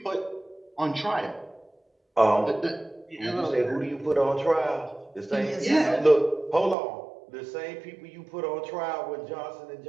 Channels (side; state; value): left; drops out; at 6.8 s